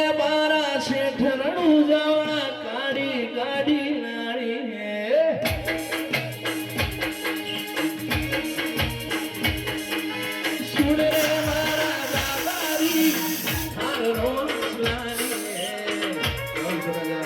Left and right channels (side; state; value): both; identical; correlation 1.00